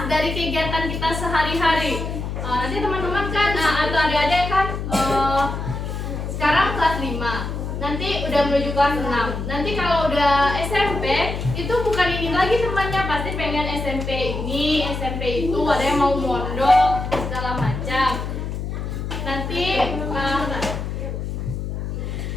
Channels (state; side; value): noise; left; hum, 4 dB below the sound